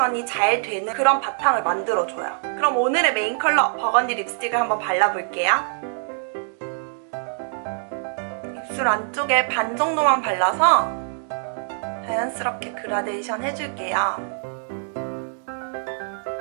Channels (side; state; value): left; silent; digital silence